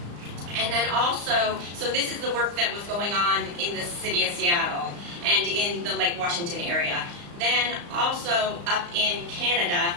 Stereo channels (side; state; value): left; late; 35 ms